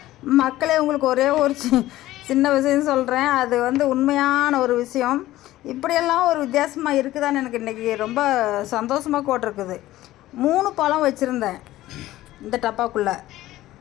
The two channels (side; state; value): right; quieter; 15.6 dB